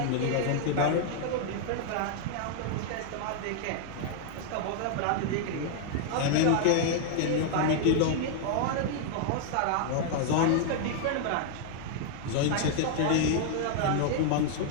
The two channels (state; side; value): different; both; correlation 0.00